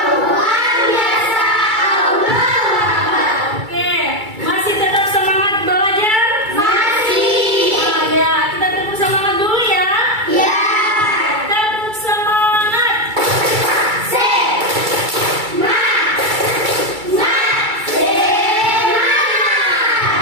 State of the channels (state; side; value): late; left; 2.3 ms